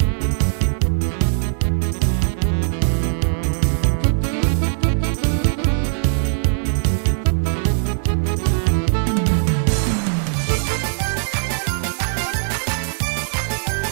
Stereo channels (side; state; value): left; silent; 65 dB below the other